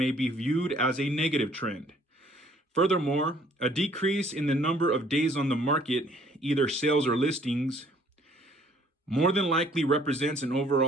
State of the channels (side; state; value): both; normal; correlation 0.60